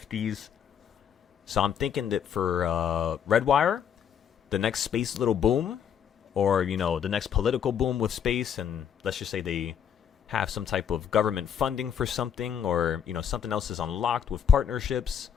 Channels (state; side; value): quieter; right; 8.3 dB